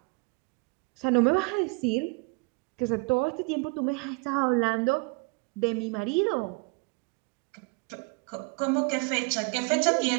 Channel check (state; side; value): quieter; left; 31.2 dB